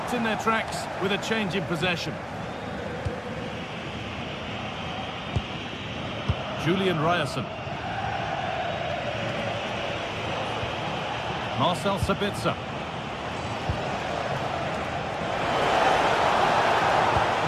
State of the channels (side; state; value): both; identical; correlation 1.00